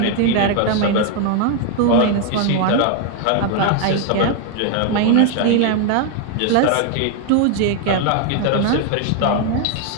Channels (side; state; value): both; different; correlation 0.00